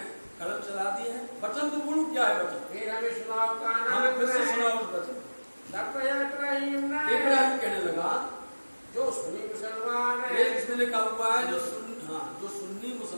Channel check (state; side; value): inverted; both; correlation -1.00